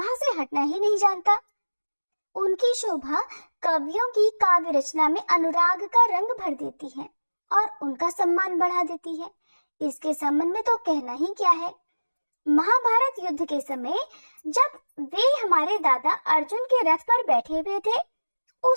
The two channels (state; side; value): inverted; both; correlation -1.00